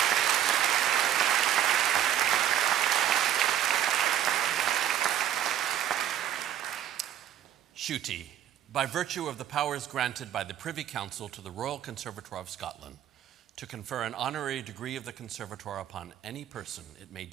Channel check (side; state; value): left; quieter; 10.9 dB